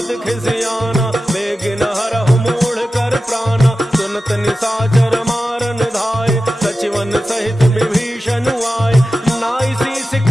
खिसियाना, बेगिन हरहु मूढ़ कर प्राणा, सुनत निशाचर मारन धाय, सचिवन सहित विभीषण आए। नाई शीस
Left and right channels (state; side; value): normal; both; correlation 0.93